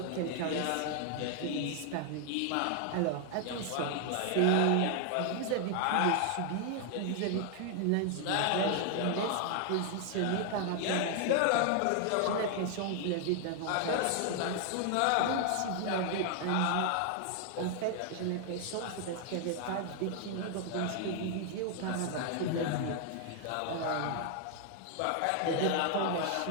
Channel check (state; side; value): different; both; correlation 0.00